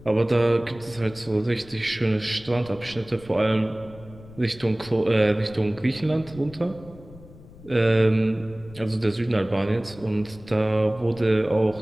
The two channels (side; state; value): left; noise; rumble, 20 dB below the sound